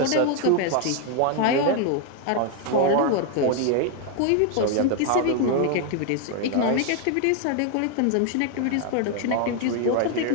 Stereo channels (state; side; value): different; both; correlation 0.00